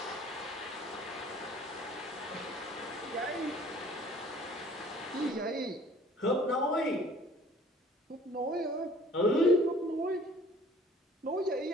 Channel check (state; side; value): normal; both; correlation 0.52